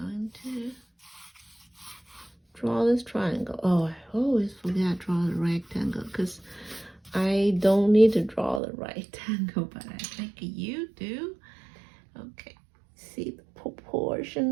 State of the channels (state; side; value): drops out; left; at 8.6 s